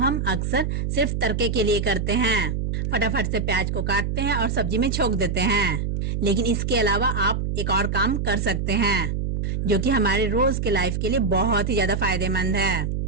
अक्सर सिर्फ तड़के के लिए करते हैं। फटाफट से प्याज को काटते हैं और सब्जी में छोक देते हैं, लेकिन इसके अलावा आप एक और काम कर सकते हैं जो कि हमारे रोज के लाइफ के लिए बहुत ही ज्यादा फायदेमंद है।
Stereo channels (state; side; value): noise; right; hum, 1 dB below the sound